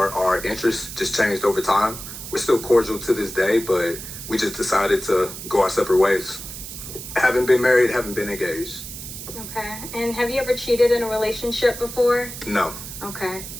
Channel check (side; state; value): right; noise; hiss, 10 dB below the sound